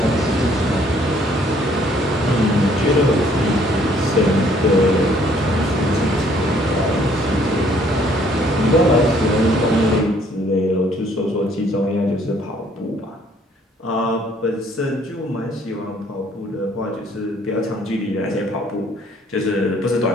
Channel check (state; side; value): normal; both; correlation 0.62